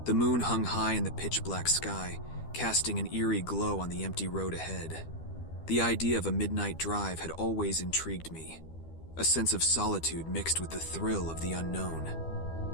The moon hung high in the pitch-black sky, casting an eerie glow on the empty road ahead. The idea of a midnight drive had always intrigued me, a sense of solitude mixed with the thrill of the unknown.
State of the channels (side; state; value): right; late; 12 ms